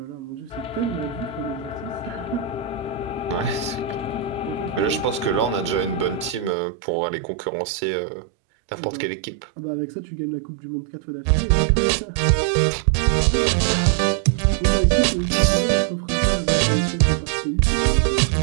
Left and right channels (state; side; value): drops out; left; at 6.6 s